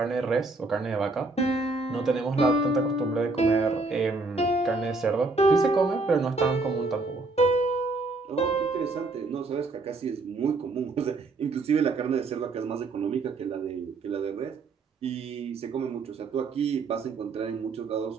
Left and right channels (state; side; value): quieter; left; 3.5 dB